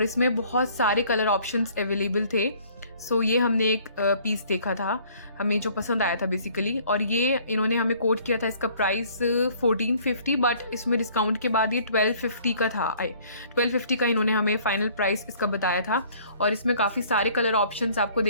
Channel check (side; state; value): both; inverted; correlation -0.57